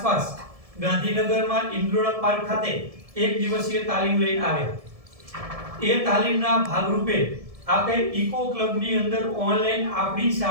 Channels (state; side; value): late; left; 1.7 ms